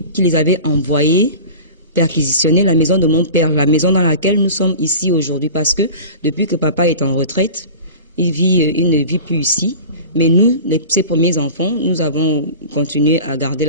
qui les avait envoyés perquisitionner la maison de mon père, la maison dans laquelle nous sommes ici aujourd'hui, parce que depuis que papa est en retraite, il ne vit plus ici. Mais nous, ses premiers enfants, nous avons continué à garder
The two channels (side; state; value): both; inverted; correlation -0.36